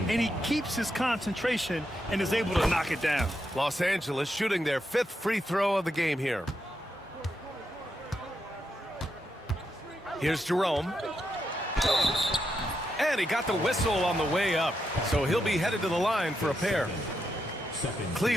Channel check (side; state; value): both; normal; correlation 0.83